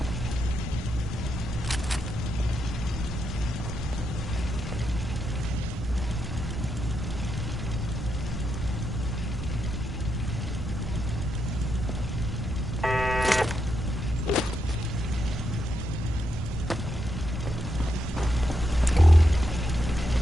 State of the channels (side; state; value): both; normal; correlation 0.82